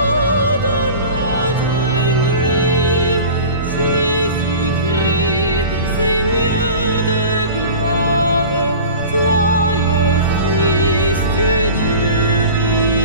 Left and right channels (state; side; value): inverted; both; correlation -0.37